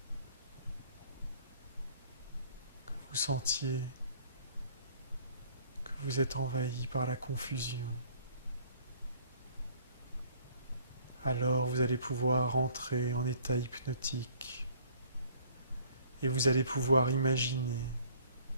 Que vous sentiez vous êtes envahi par la confusion, alors vous allez pouvoir entrer en état hypnotique et vous allez pouvoir imaginer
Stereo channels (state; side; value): inverted; both; correlation -0.56